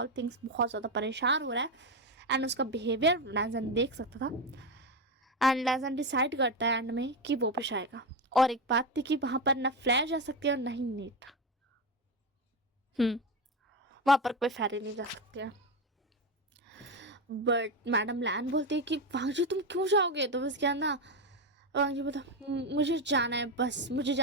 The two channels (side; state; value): both; normal; correlation 0.13